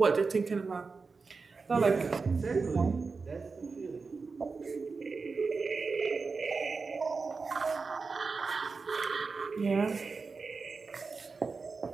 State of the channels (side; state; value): left; quieter; 4.5 dB